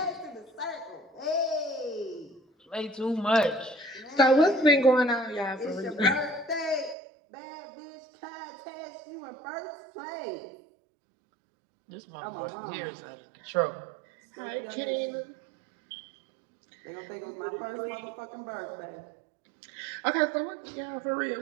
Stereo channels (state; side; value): drops out; left; at 7.0 s